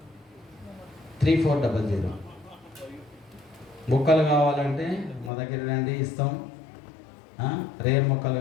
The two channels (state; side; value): drops out; right; at 5.3 s